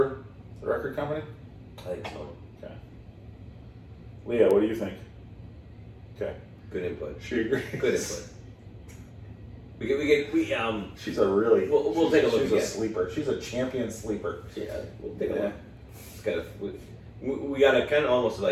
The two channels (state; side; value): identical; both; correlation 1.00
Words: the record company? I think so. Okay. Leah, what do you think? Okay. Good input. She agrees. Good input. We She's a really. We'll take a look. She's a sleeper. She's a champion sleeper. Yeah. We'll take a look. It's kind of we gotta kind of almost